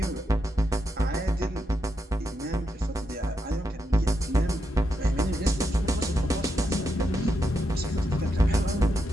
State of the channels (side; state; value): both; normal; correlation 0.83